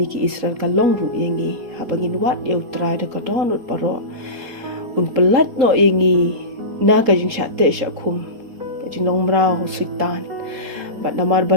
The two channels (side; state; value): left; late; 3.8 ms